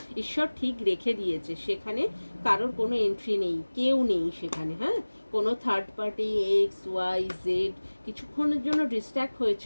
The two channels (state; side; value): inverted; both; correlation -1.00